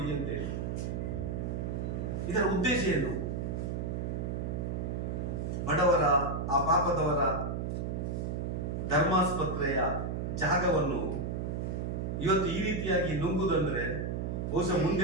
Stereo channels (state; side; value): noise; right; hum, 2 dB below the sound